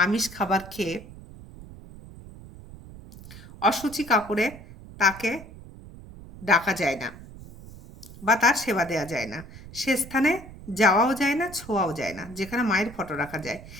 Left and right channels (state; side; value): noise; right; rumble, 17 dB below the sound